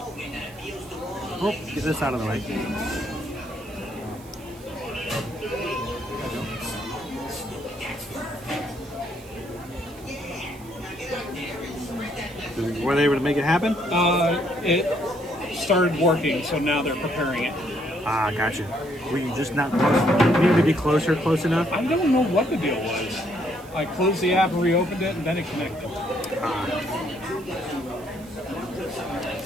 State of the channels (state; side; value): noise; right; hiss, 22 dB below the sound